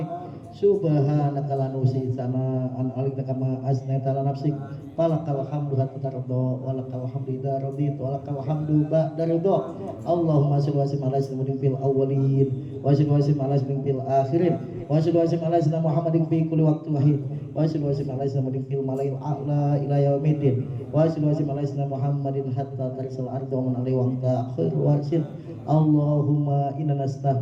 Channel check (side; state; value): both; identical; correlation 1.00